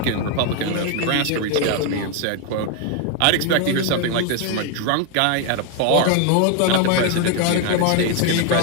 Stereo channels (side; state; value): both; different; correlation 0.01